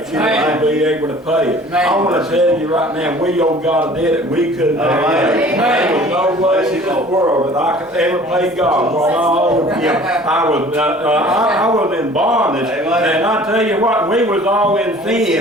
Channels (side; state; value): both; normal; correlation 0.48